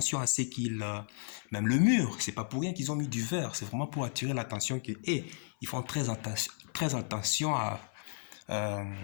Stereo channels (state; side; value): silent; right; 55 dB below the other